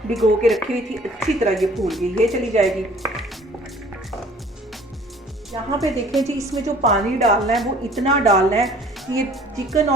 भिगो के रखी हुई थी, अच्छी तरह ये फूल गई, ये चली जाएगी। यहाँ पे देखें जी, इसमें जो पानी डालना है वो इतना डालना है कि ये चिकन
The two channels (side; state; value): both; normal; correlation 0.53